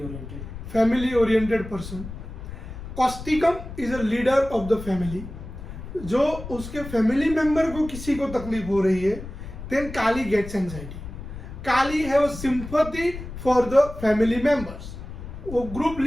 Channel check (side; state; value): left; noise; rumble, 11 dB below the sound